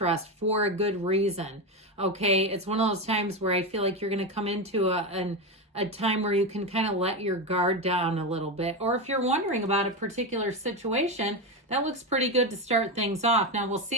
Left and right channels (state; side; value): normal; both; correlation 0.14